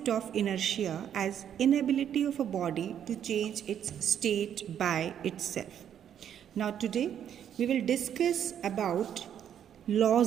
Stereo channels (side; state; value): left; quieter; 9.4 dB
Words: of inertia as inability of a body to change its state by itself. Now today we will discuss about